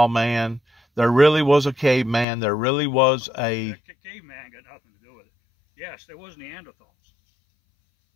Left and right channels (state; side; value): drops out; right; at 2.2 s